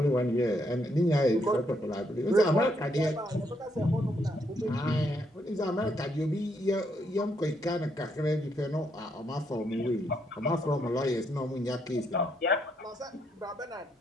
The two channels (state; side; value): normal; both; correlation 0.75